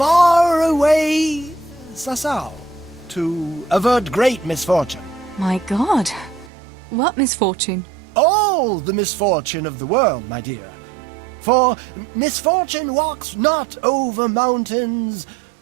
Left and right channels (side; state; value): left; drops out; at 6.5 s